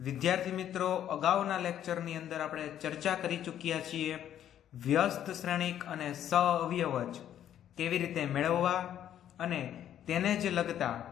મિત્રો, અગાઉના લેક્ચરની અંદર આપણે ચર્ચા કરી ચૂક્યા છીએ વ્યસ્ત શ્રેણિક અને સઅવયવજ કેવી રીતે મેળવવા અને તેને જ લગતા,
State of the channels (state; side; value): quieter; right; 10.7 dB